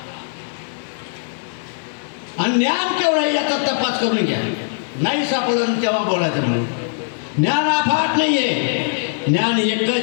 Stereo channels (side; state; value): right; silent; digital silence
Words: आणि ज्ञान केवढं आहे याचा तपास करून घ्या नाही सापडलं तेव्हा बोलायचं म्हणून ज्ञान अफाट नाही आहे ज्ञान एकच